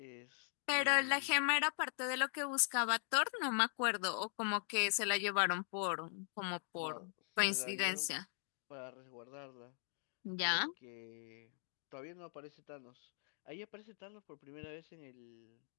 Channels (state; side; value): silent; right; 51 dB below the other